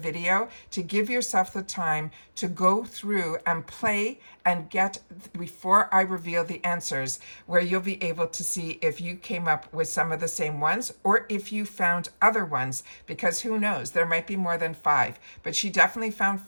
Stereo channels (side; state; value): both; inverted; correlation -1.00